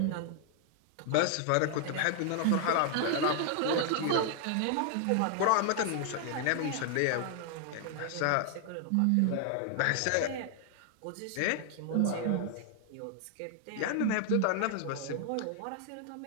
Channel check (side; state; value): both; different; correlation 0.00